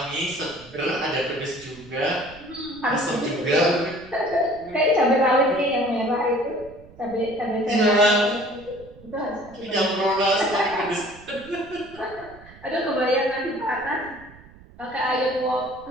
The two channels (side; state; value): right; noise; rumble, 22 dB below the sound